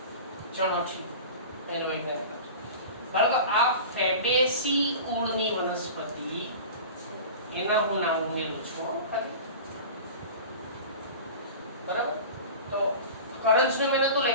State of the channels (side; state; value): both; inverted; correlation -0.35